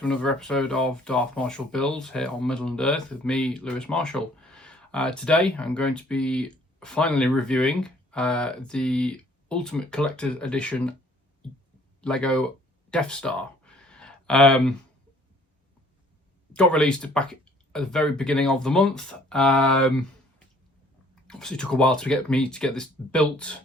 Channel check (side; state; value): both; normal; correlation 0.58